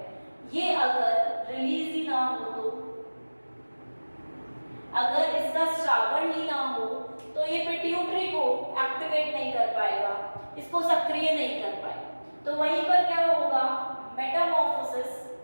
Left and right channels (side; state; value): both; inverted; correlation -1.00